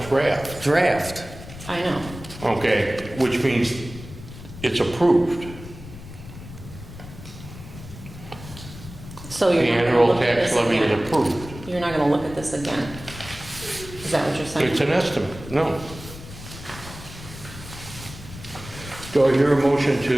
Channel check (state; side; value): noise; left; rumble, 14 dB below the sound